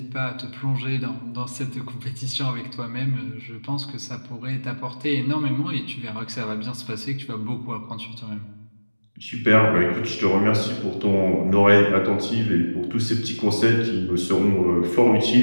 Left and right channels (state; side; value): inverted; both; correlation -1.00